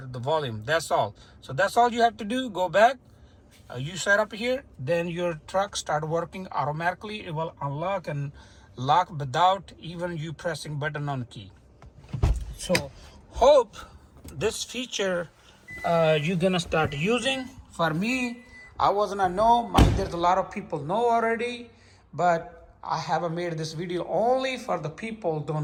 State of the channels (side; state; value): both; identical; correlation 1.00